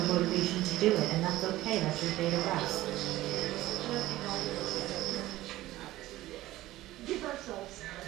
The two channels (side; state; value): left; quieter; 16.3 dB